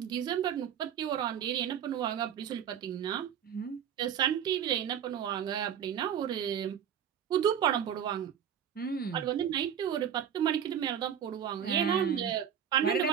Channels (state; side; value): quieter; left; 8.9 dB